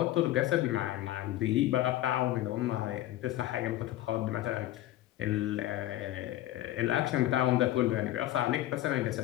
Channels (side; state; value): right; quieter; 14.7 dB